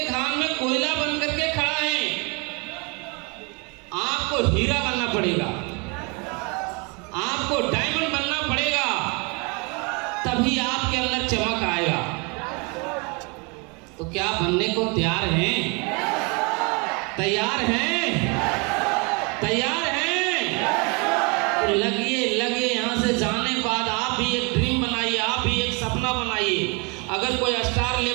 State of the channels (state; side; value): quieter; left; 31.3 dB